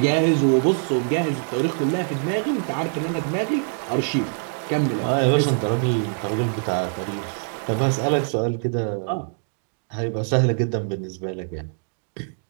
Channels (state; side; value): silent; left; 56 dB below the other